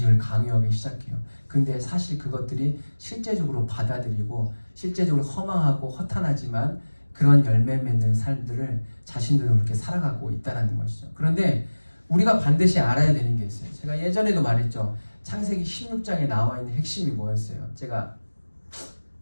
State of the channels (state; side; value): inverted; both; correlation -1.00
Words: 강요하기 시작해요. 근데 사실 그것들이 실제적으로 받아들이고 실제적으로 허망하고 허탄하지만 그런 열매 맺는 삶들을 자신들도 그렇게 살아가고 있다는 것이죠. 그런데 우리가 반드시 알아야 되는 게 있어요. 제가 예전에도 말했죠. 창세기 16장에 나와 있는 핵심이 뭐였어요? 제가